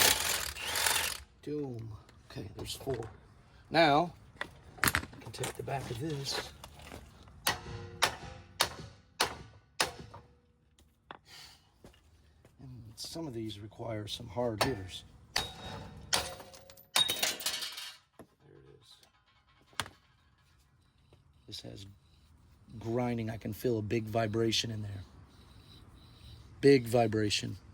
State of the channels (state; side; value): identical; both; correlation 1.00